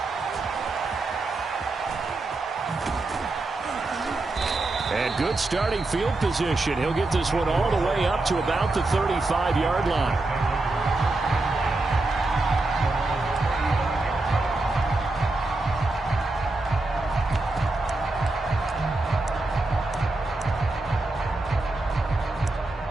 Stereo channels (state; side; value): quieter; left; 3.1 dB